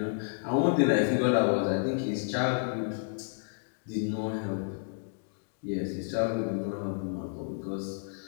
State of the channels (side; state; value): right; silent; digital silence